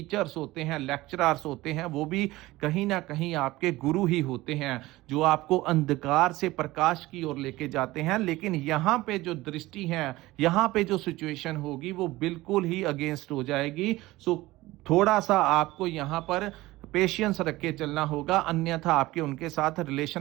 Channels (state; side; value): quieter; left; 18.6 dB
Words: होते हैं, लेक्चरर्स होते हैं, वो भी कहीं ना कहीं आपके गुरु ही होते हैं, जो आपको अंधकार से प्रकाश की ओर लेके जाते हैं। लेकिन यहाँ पे जो दृष्टि है, यहाँ पे जो सिचुएशन होगी वो बिल्कुल ही अगेंस्ट हो जाएगी। सो थोड़ा सा आपको यहाँ पर पेशेंस रख के चलना होगा, अन्यथा आपके उनके साथ